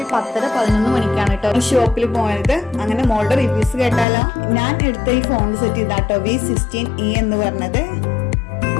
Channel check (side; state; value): right; drops out; at 4.0 s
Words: 10-11 മണിക്കാണ് കേട്ടോ ഈ ഷോപ്പിൽ പോയത്. അങ്ങനെ മോളുടെ റിവ്യൂസ് കേട്ടാലോ. ഞാൻ എടുത്ത ഈ ഫോൺ സെറ്റ് ഇതാട്ടോ V16e എന്ന് പറഞ്ഞത്.